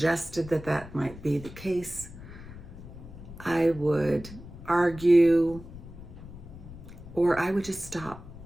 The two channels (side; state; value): left; noise; rumble, 15 dB below the sound